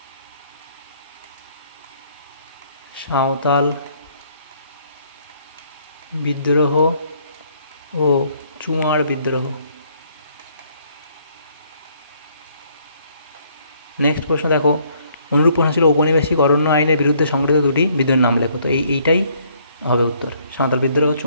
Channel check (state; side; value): inverted; both; correlation -0.65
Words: সাঁওতাল বিদ্রোহ ও চুয়ার বিদ্রোহ। নেক্সট প্রশ্ন দেখো, অনুরূপ প্রশ্ন ছিল ঔপনিবেশিক অরণ্য আইনের বিরুদ্ধে সংগঠিত দুটি বিদ্রোহের নাম লেখো। তো এইটাই হবে উত্তর, সাঁওতাল বিদ্রোহ ও